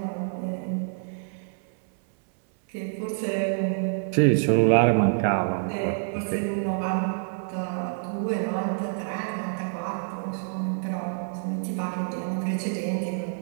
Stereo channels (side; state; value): left; silent; 60 dB below the other